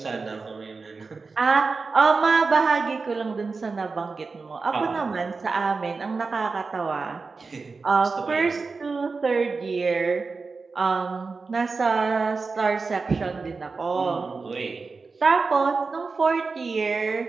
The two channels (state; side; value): quieter; left; 4.3 dB